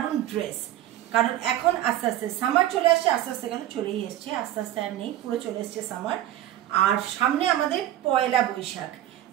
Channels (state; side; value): quieter; left; 13.2 dB